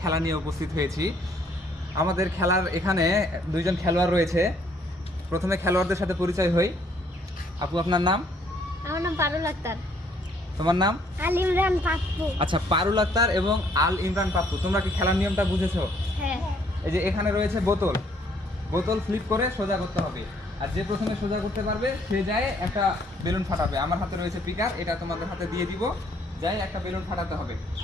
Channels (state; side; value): normal; both; correlation 0.65